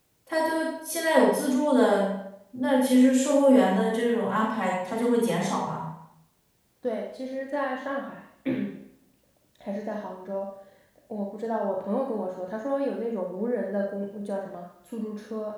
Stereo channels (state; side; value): identical; both; correlation 1.00